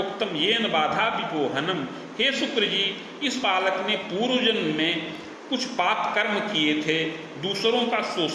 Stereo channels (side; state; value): both; identical; correlation 1.00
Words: येन बाधा विपोहनम, हे शुक्र जी, इस बालक ने पूर्व जन्म में कुछ पाप कर्म किए थे, दूसरों का